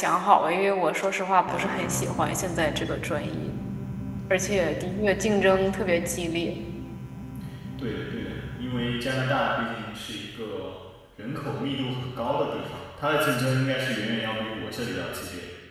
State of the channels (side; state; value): both; identical; correlation 1.00